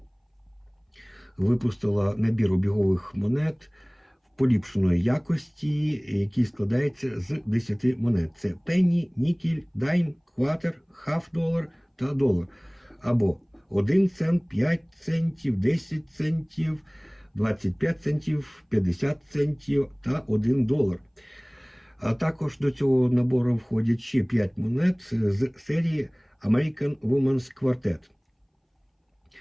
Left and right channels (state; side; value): identical; both; correlation 1.00